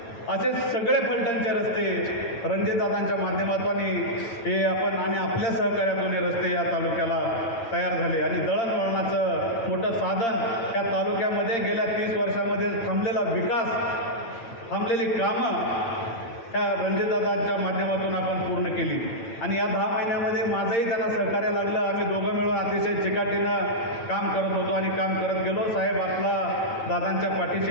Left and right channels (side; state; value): right; late; 8.7 ms